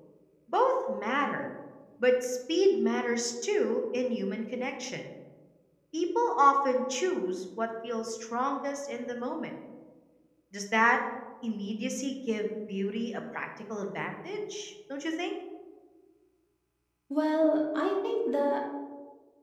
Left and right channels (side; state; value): both; identical; correlation 1.00